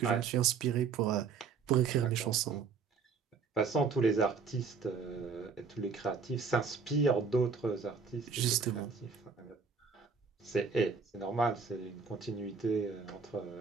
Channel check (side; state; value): left; quieter; 5.3 dB